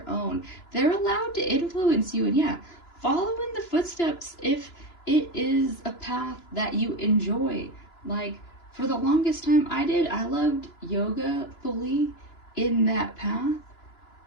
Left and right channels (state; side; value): late; right; 2.9 ms